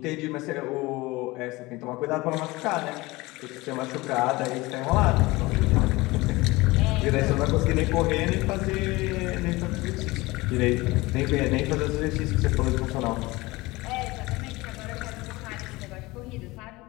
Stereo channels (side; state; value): right; quieter; 21.4 dB